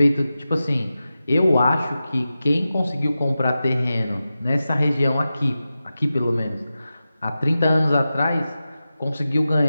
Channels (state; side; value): inverted; both; correlation -0.93